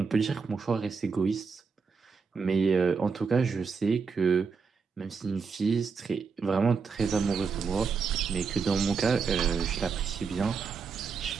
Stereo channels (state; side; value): quieter; left; 5.3 dB